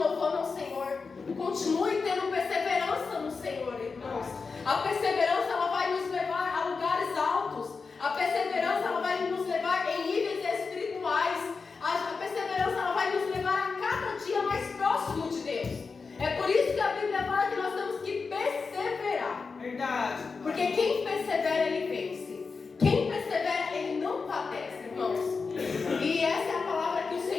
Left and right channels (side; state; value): right; quieter; 4.7 dB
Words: ao Senhor. Continue tendo perseverança no Senhor, irmãos. A perseverança ela vai nos levar a lugares altos. A perseverança ela vai nos levar em níveis espirituais. A perseverança ela vai nos levar a cada dia mais próximo de Deus. É por isso que a Bíblia fala que nós temos que perseverar. Verdade. Porque quem persevera, ele vence. Quem persevera, ele não padece, irmãos. E essa é a palavra que o